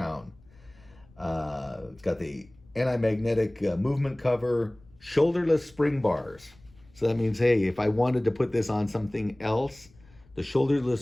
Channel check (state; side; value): noise; left; rumble, 28 dB below the sound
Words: It's got the anti-magnetic movement cover, shoulderless spring bars. So that means, hey, if I wanted to put this on something else, the